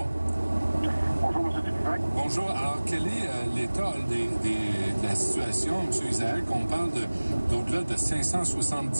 Bonjour, M. Dupuis. Bonjour. Alors, quel est l'état de la situation, M. Isaac? On parle d'au-delà de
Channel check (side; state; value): both; inverted; correlation -1.00